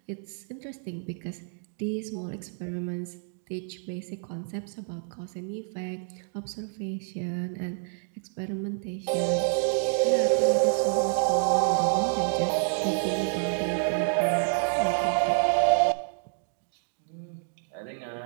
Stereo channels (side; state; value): left; silent; digital silence